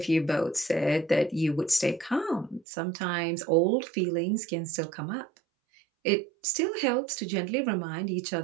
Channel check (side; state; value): left; drops out; at 2.7 s